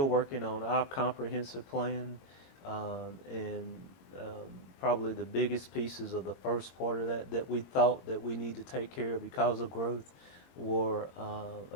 working on our comprehensive plan, and probably the biggest pieces of the first part of that we thought that we need to take care of because of growth were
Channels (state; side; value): late; right; 22 ms